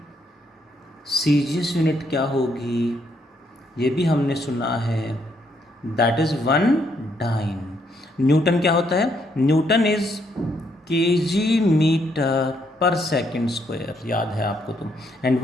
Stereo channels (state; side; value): normal; both; correlation 0.73